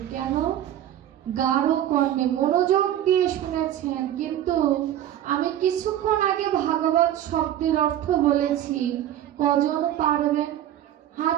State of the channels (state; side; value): quieter; left; 11.8 dB